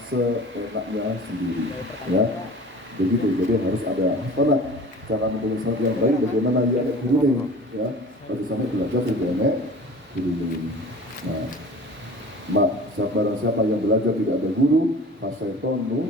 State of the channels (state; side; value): normal; both; correlation 0.42